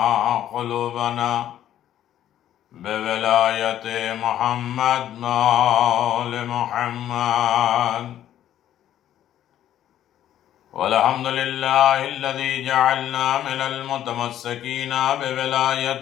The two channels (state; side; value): quieter; right; 11.5 dB